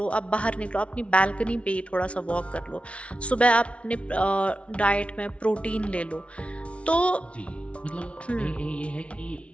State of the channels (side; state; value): right; late; 0.061 ms